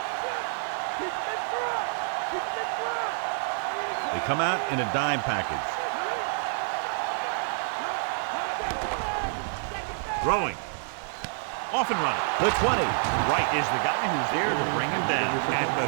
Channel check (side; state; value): left; silent; digital silence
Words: They come out in a dime package. Throwing. Off and running. The 20. Wright is the guy who's there to bring him down at the